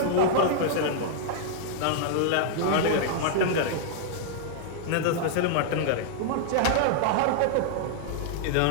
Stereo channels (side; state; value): both; different; correlation -0.01